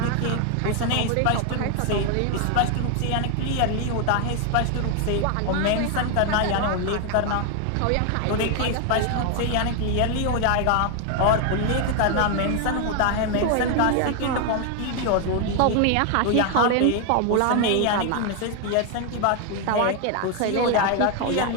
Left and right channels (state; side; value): different; both; correlation 0.01